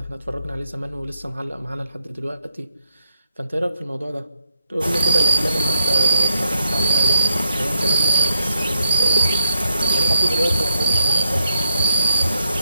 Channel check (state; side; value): inverted; both; correlation -0.76